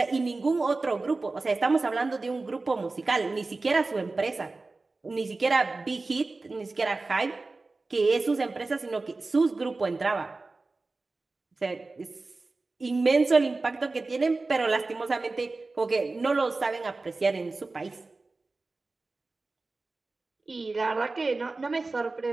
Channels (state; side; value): quieter; left; 3.5 dB